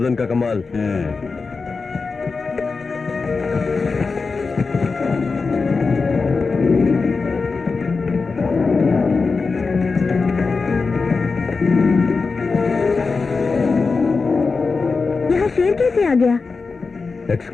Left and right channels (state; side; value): quieter; right; 4.4 dB